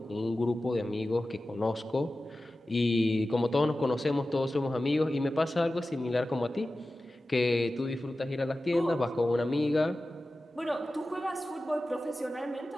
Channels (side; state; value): both; normal; correlation 0.95